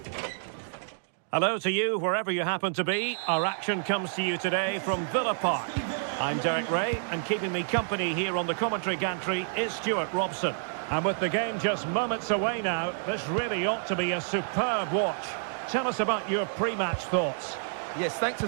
Hello to you, wherever you happen to be. Our action comes to you today from Villa Park. I'm Derek Ray, and keeping me company here on the commentary gantry is Stuart Robson. And with the game just moments away now, this really ought to be a superb watch. Tell us about your pre-match thoughts. Yes, thanks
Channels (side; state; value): left; silent; digital silence